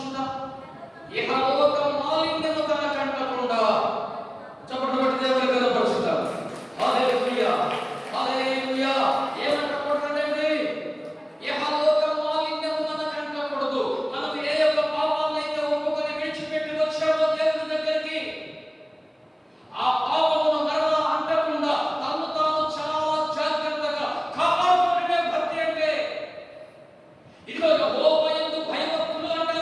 ఇహలోక మాలిన్యము తన కంటకుండా చప్పట్లు కొట్టి దేవుని కనపరుచుతారు. హల్లెలూయా, హల్లెలూయా. ఏమంటకూడదండి? ఇహలోక మాలిన్యము మన కంటకూడదు. మనం ఏ యొక్క పాపాలైతే ఒప్పుకొని విడిచిపెట్టి వచ్చామో దేవుని దగ్గరికి, ఆ పాపమును మరలా అంటకుండా తను తాను చాలా జాగ్రత్తగా కాపాడుకునే భక్తి అంటే. ఇదిగో యెహోవా యందు భయభక్తులు అంటే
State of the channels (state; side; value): identical; both; correlation 1.00